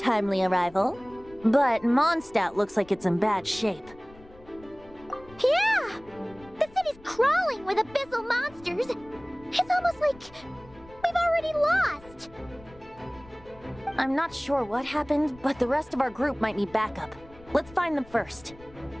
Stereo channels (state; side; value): noise; left; rumble, 23 dB below the sound